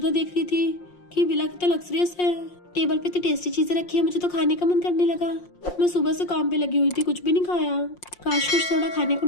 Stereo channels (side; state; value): right; late; 5.6 ms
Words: देख रही थी कि विला कितना लग्जरियस है, टेबल पे इतनी टेस्टी चीजें रखी है, मुझे तो खाने का मन करने लगा। मैं सुबह से काम पे लगी हुई थी, कुछ भी नहीं खाया, काश कुछ थोड़ा खाने को